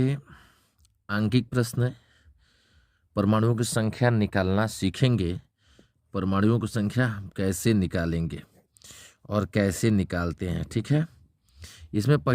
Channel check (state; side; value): identical; both; correlation 1.00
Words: आंकिक प्रश्न। परमाणुओं की संख्या निकालना सीखेंगे। परमाणुओं की संख्या हम कैसे निकालेंगे और कैसे निकालते हैं, ठीक है। इसमें